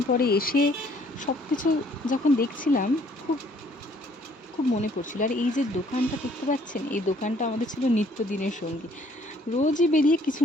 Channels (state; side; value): normal; both; correlation 0.62